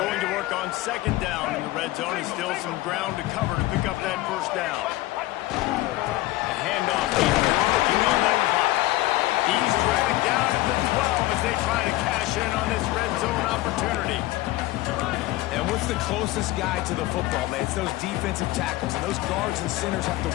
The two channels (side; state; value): right; quieter; 17.7 dB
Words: to work on second down in the red zone. Is still some ground to cover to pick up that first down. The handoff. He's working on that clock. He's dragged down at the 12 as they try to cash in on this red zone opportunity. And what's the closest guy to the football, man? It's those defensive tackles, and those guards and centers have